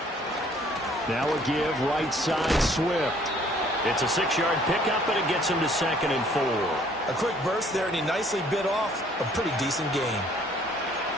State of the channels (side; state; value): both; normal; correlation 0.59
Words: Now a give right side Swift. It's a 6-yard pickup, and it gets him to 2nd and 4. A quick burst there, and he nicely bit off a pretty decent gain.